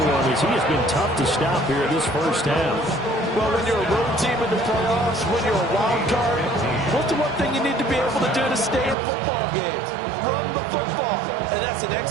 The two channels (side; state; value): left; drops out; at 9.0 s